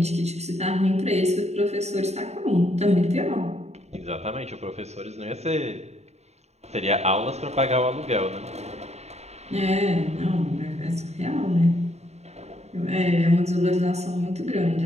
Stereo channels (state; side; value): late; left; 0.32 ms